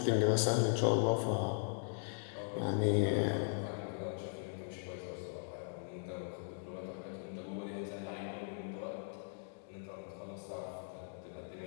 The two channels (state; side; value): silent; right; digital silence